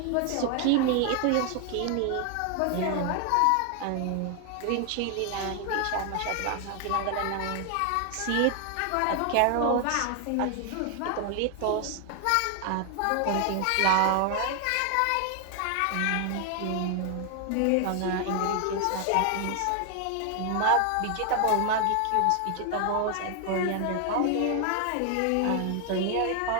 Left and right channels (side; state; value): both; different; correlation 0.00